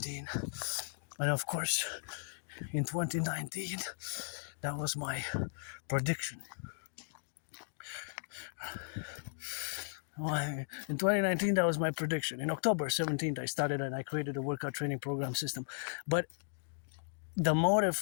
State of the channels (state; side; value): silent; right; digital silence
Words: And, of course, in 2019, that was my prediction. Well, in 2019, that was my prediction. In October 17th, I started and I created a workout training program system. But the motive